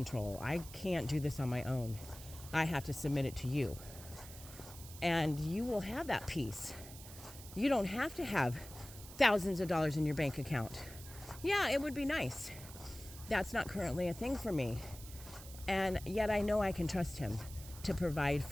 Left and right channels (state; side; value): noise; right; hiss, 15 dB below the sound